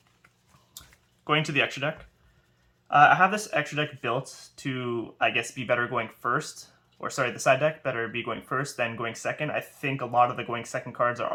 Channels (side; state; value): both; identical; correlation 1.00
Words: Going to the extra deck. I have this extra deck built to, I guess, be better going first. Or sorry, the side deck better be going first than going second. I think a lot of the going second cards are